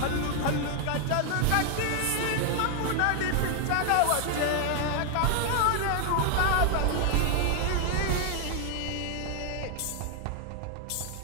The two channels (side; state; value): both; different; correlation 0.00